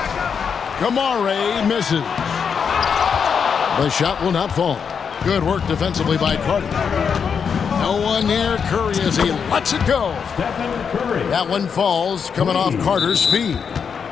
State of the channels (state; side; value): quieter; right; 6.6 dB